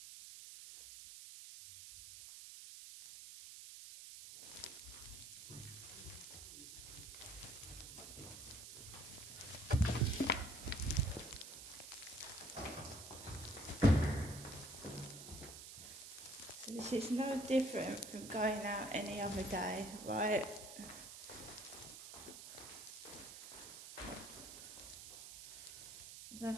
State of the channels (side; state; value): right; noise; hiss, 11 dB below the sound